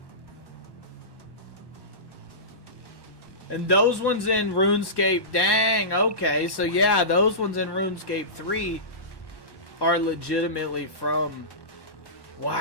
And those ones in RuneScape, dang, okay. So yeah, those ones in RuneScape 3 are legitimately from...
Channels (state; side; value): late; right; 1.1 ms